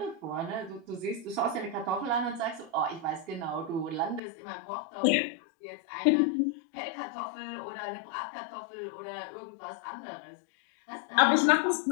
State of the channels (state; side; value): drops out; right; at 4.2 s